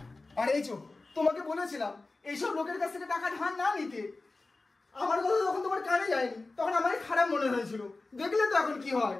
আর এই চো, তোমাকে বলেছিলাম এইসব লোকের কাছ থেকে টাকা ধার না নিতে। আমার কথা যখন তোমার কানে যায়নি, তখন আমারই খারাপ মনে হয়েছিল। দেখলে তো এখন কি হয়।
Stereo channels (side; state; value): right; quieter; 3.4 dB